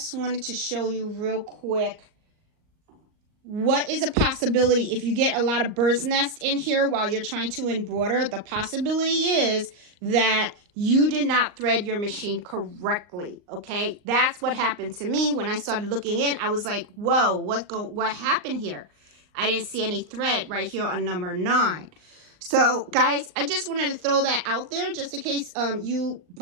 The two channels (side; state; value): left; late; 39 ms